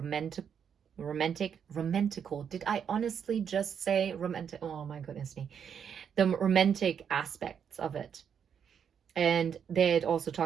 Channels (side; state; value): left; quieter; 7.7 dB